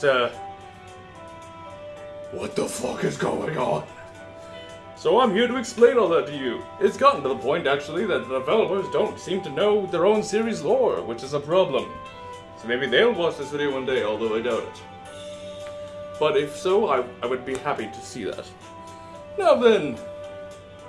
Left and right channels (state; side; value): identical; both; correlation 1.00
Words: what the fuck is going on? So I'm here to explain all that to you. It's gotten to the point, actually, that the developers don't seem to know their own series lore, which is a problem. So maybe they'll watch this video one day, although I doubt it. But if so, I would be happy to see that. Now then,